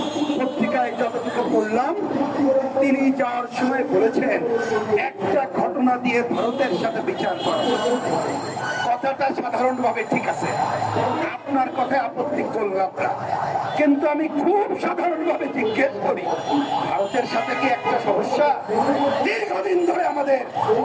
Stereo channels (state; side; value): identical; both; correlation 1.00